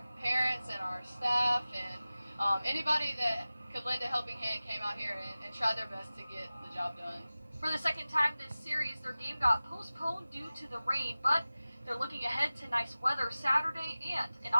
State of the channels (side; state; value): both; inverted; correlation -0.97